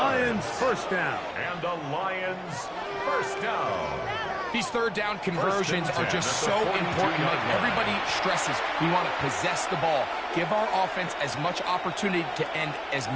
first down. And a Lions first down. These third down conversions are just so important. Like everybody stresses, we want to possess the ball, give our offense as much opportunity to end as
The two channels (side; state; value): both; identical; correlation 1.00